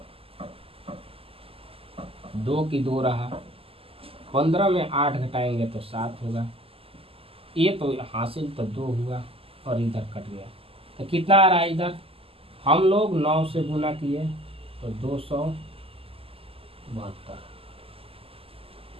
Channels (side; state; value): left; late; 0.27 ms